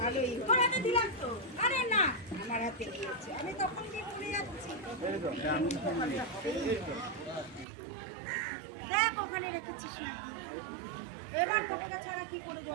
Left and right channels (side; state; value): left; drops out; at 7.7 s